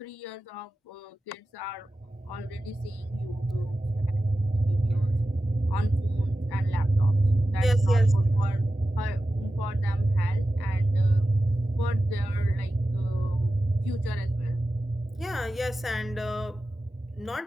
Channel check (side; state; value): both; normal; correlation 0.93